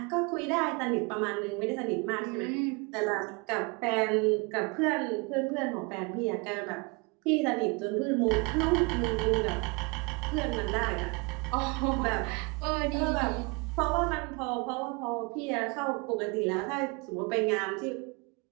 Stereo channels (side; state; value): left; quieter; 29.4 dB